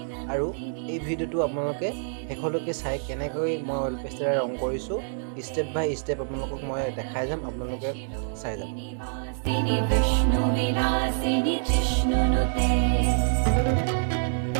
আৰু এই ভিডিঅ'টো আপোনালোকে শেষলৈকে চাই কেনেকৈ মই অইল পেষ্টেলেৰে ৰং কৰিছোঁ ষ্টেপ বাই ষ্টেপ আপোনালোকক মই দেখাই যাম, আপোনালোকে চাই যাম।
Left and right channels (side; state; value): left; silent; 60 dB below the other